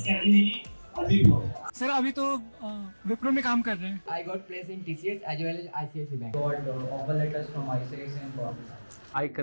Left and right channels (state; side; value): inverted; both; correlation -1.00